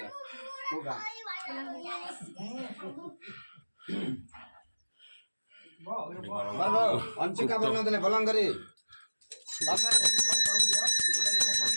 अंशिका बना देले भलंगरी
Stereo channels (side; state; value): both; inverted; correlation -1.00